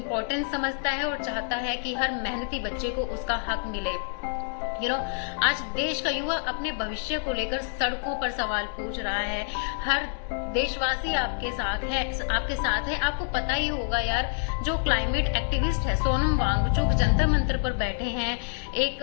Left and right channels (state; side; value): silent; right; digital silence